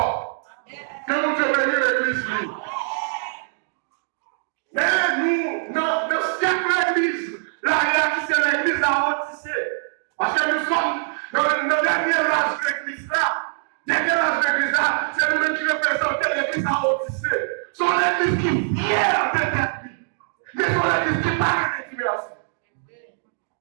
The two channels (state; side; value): silent; left; digital silence